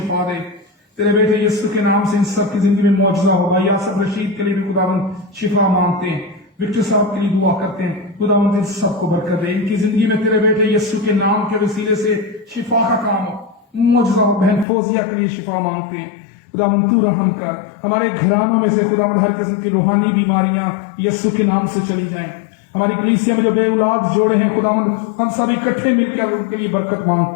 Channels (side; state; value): right; drops out; at 14.7 s